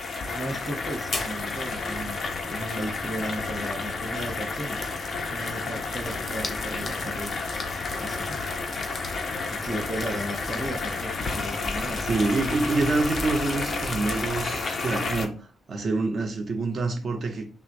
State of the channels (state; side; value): normal; both; correlation 0.82